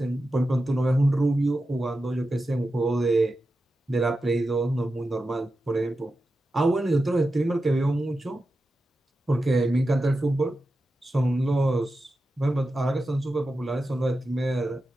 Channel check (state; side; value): normal; both; correlation 0.91